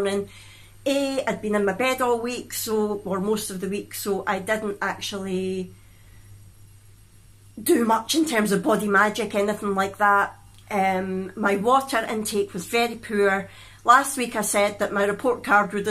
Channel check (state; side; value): identical; both; correlation 1.00